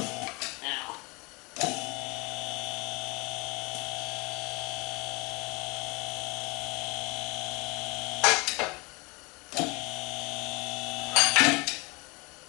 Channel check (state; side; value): quieter; right; 27.3 dB